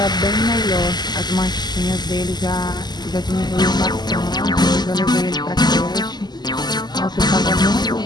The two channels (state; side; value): late; right; 0.21 ms